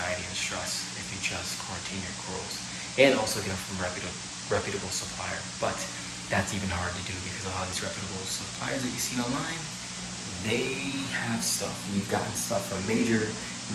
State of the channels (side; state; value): both; identical; correlation 1.00